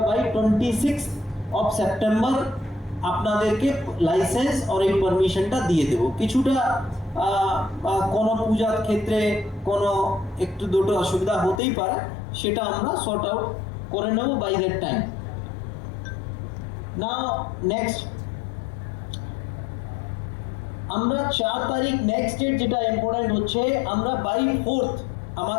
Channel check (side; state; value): right; drops out; at 11.6 s